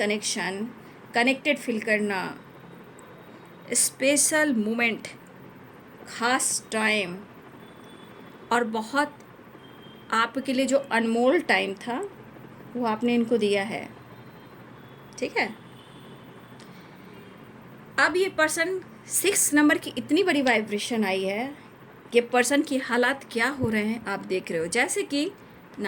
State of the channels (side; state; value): both; identical; correlation 1.00